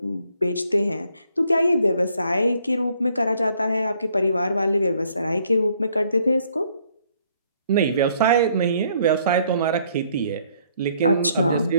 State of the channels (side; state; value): both; inverted; correlation -0.66